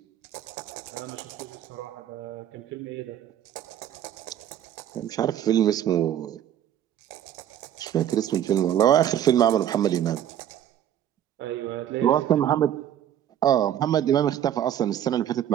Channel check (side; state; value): left; quieter; 10.8 dB